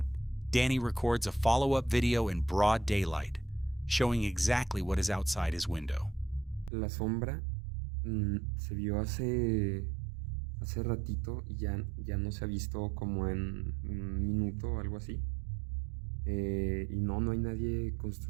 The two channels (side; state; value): left; drops out; at 6.7 s